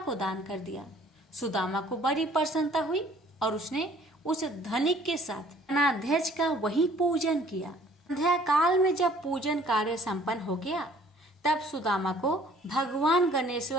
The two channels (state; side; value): normal; both; correlation 0.57